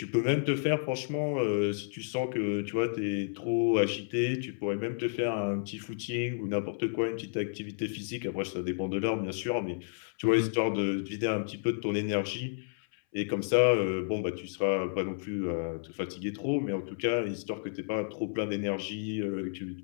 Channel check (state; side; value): silent; right; 57 dB below the other